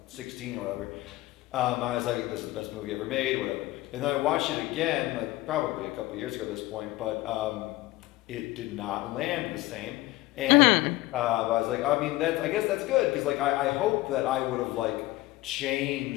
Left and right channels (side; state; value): right; quieter; 18.2 dB